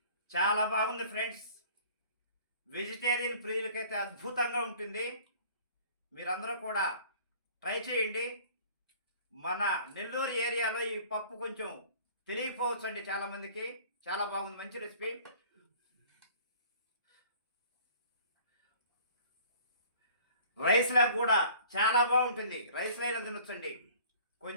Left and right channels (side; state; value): both; inverted; correlation -0.50